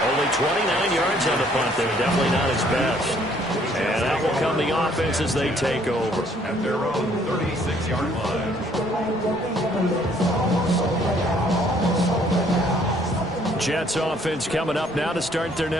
Only 29 yards on the punt there. Definitely not his best. And that will come the offense as they take over. At their own 36-yard line. Jets offense coming up now to start their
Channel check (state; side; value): normal; both; correlation 0.63